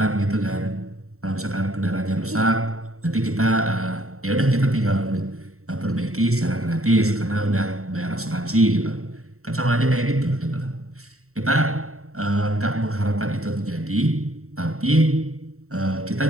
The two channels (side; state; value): left; late; 0.63 ms